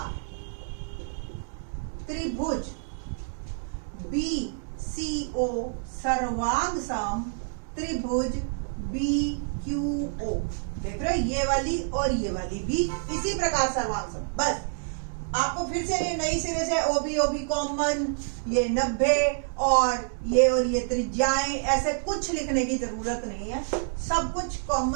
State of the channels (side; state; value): left; silent; digital silence